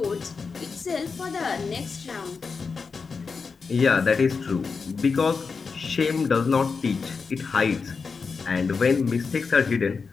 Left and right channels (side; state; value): right; quieter; 5.0 dB